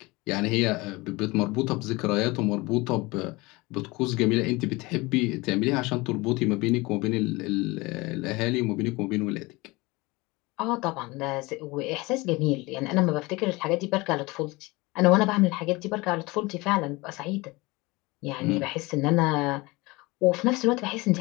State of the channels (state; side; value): quieter; right; 23.1 dB